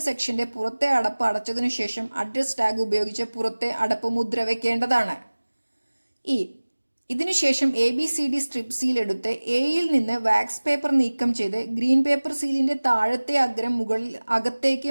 സെക്ഷന്റെ പുറത്തെ അടപ്പ് അടച്ചതിനു ശേഷം അഡ്രസ് ടാഗ് ഉപയോഗിച്ച് പുറത്തെ അടപ്പ് മുദ്ര വയ്ക്കേണ്ടതാണ്. ഇ. ഇതിനുശേഷം ABCD സ്ട്രിപ്പ് സീൽ എടുത്ത് എയിൽ നിന്ന് വാക്സ് പേപ്പർ നീക്കം ചെയ്ത് ഗ്രീൻ പേപ്പർ സീലിന്റെ താഴത്തെ അഗ്രം അകത്തേക്ക്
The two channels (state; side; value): inverted; both; correlation -1.00